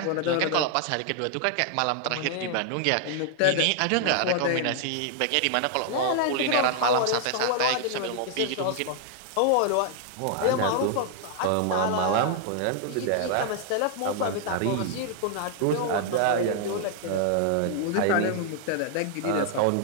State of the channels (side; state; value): both; different; correlation 0.00